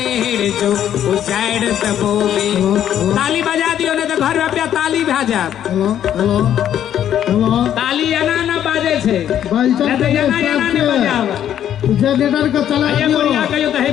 जो, उजाड़ दबोगे। ताली बजा दियो ने तो घर में ताली भेजा। ताली एना ना बाजे छे, जनरेटर का चला दियो।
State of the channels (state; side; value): quieter; right; 10.4 dB